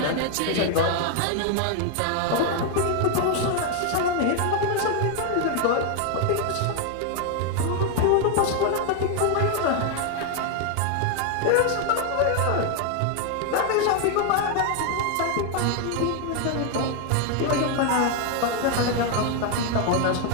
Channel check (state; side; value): different; both; correlation 0.01